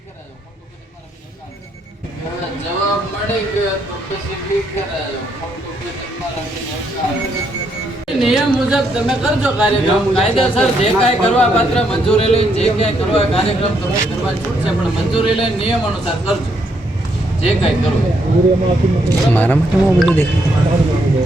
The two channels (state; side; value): normal; both; correlation 0.75